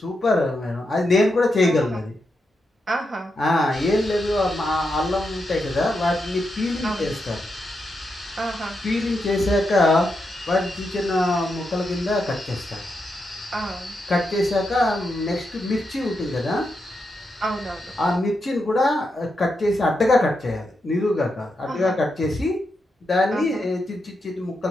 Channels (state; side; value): normal; both; correlation 0.85